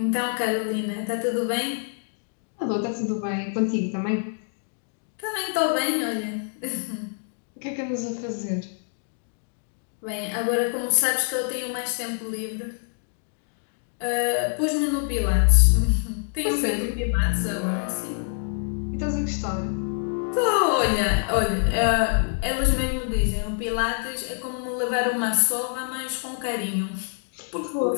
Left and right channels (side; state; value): right; silent; 59 dB below the other